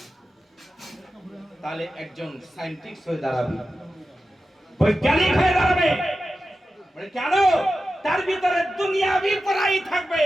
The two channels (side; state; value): both; normal; correlation 0.92